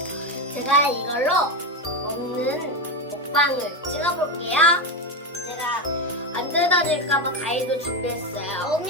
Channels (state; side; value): normal; both; correlation 0.13